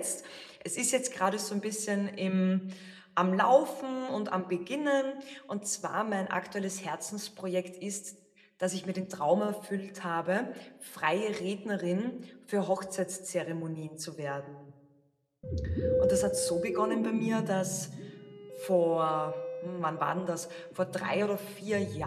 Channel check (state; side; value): identical; both; correlation 1.00